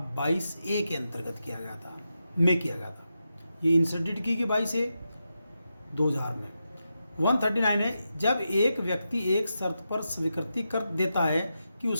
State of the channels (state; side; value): inverted; both; correlation -0.88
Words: 22A के अंतर्गत किया गया था। ये इंसर्टेड की 22A 2000 में। 139 है, जब एक व्यक्ति एक शर्त पर स्वीकृति कर देता है कि